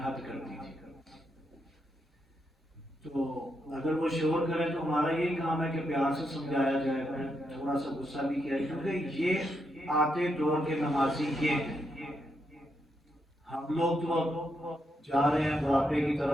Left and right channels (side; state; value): both; normal; correlation 0.81